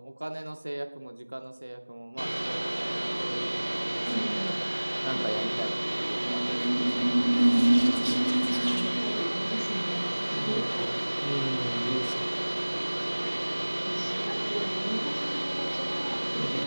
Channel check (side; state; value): both; inverted; correlation -1.00